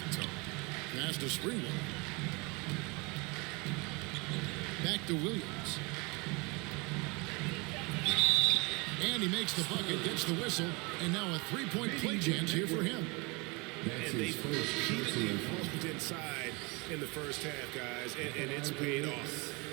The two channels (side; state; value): left; quieter; 27.9 dB